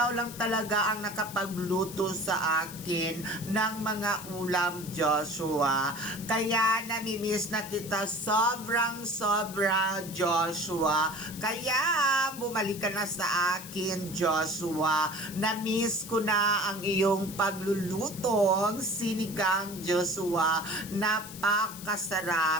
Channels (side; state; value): left; noise; hiss, 13 dB below the sound